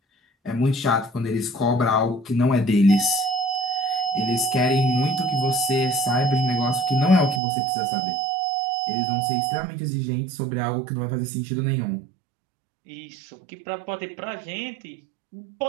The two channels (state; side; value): drops out; left; at 7.4 s